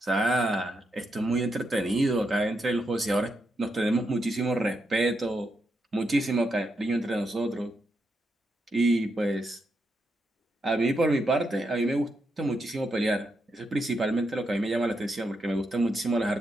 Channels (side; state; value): both; normal; correlation 0.83